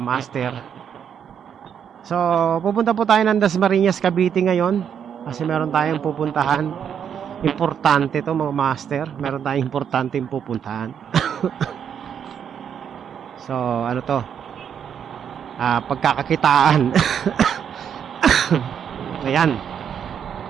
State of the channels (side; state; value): left; quieter; 8.2 dB